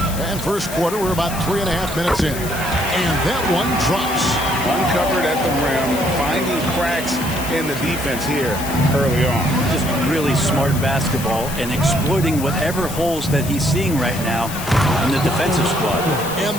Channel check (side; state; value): left; noise; hiss, 10 dB below the sound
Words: And first quarter, we're about 3.5 minutes in. And that one drops. Uncovered at the rim, finding cracks in the defense here early on. Just really smart basketball and exploiting whatever holes that he's seeing right now in the defensive squad. And